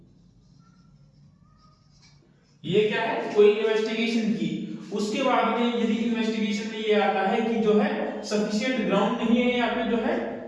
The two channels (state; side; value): identical; both; correlation 1.00